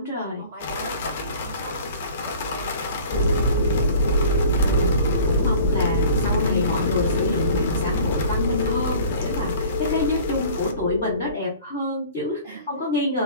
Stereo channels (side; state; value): both; inverted; correlation -0.45